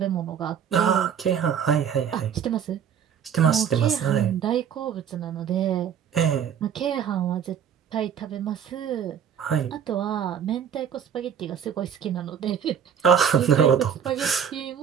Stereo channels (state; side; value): quieter; left; 8.1 dB